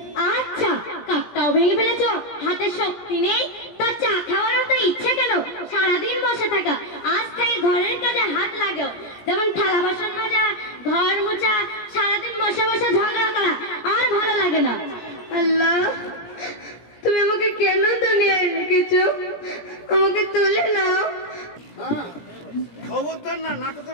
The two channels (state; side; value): late; right; 17 ms